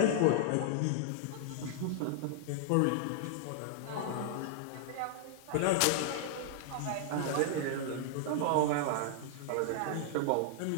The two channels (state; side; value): different; both; correlation -0.01